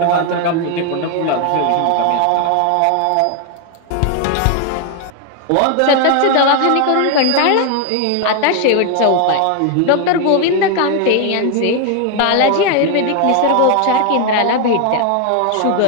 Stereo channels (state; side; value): different; both; correlation 0.01